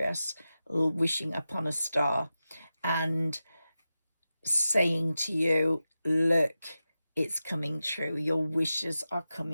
wishing upon a star and saying to you, look, it's coming true. Your wishes are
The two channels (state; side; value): inverted; both; correlation -0.93